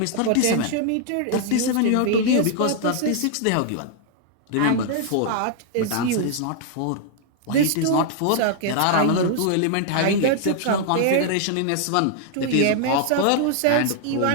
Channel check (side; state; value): both; different; correlation 0.00